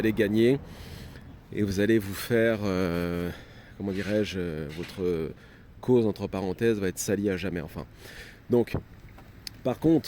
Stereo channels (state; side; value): identical; both; correlation 1.00